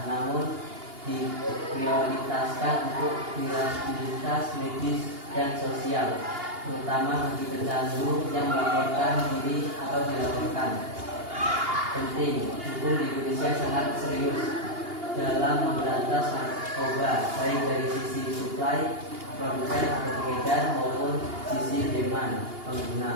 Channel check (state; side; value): late; left; 2.8 ms